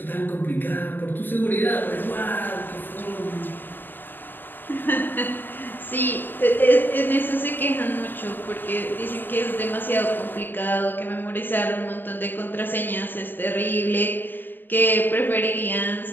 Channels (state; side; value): late; right; 0.093 ms